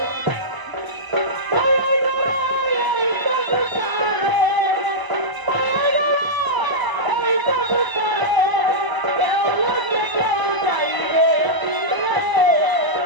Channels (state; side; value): late; left; 1.0 ms